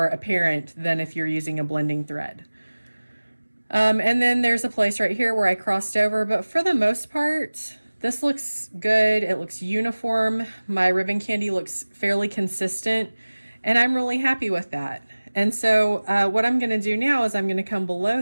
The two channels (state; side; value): inverted; both; correlation -1.00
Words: apparent than if you're using a blending thread. And then there's a place right here where I crossed over, but for the most part, this looks good. It looks uniform. My ribbon candy looks fairly consistent, and I'm really happy with that. And so what I'm going to do now is I'm going to come below